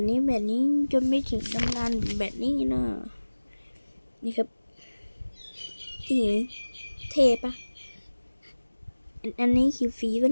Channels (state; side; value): inverted; both; correlation -1.00